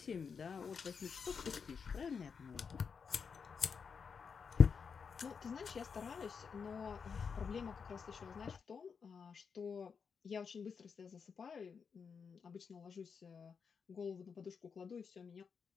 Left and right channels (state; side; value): quieter; right; 6.0 dB